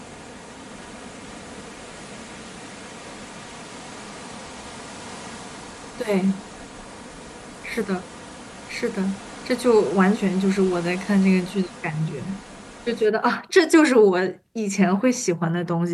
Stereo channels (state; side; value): identical; both; correlation 1.00